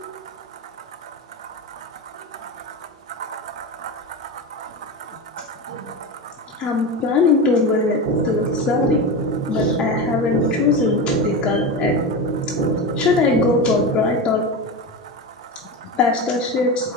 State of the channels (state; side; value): normal; both; correlation 0.22